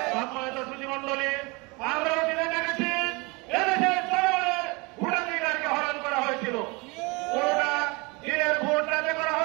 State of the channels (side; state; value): left; quieter; 27.2 dB